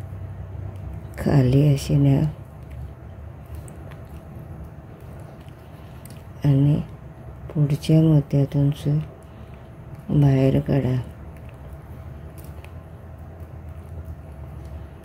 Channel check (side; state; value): both; identical; correlation 1.00